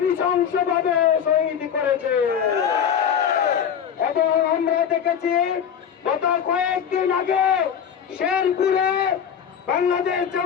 নৃশংসভাবে শহীদ করেছে। এবং আমরা দেখেছি গত কয়েকদিন আগে শেরপুরে বাংলাদেশ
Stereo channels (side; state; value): right; quieter; 8.2 dB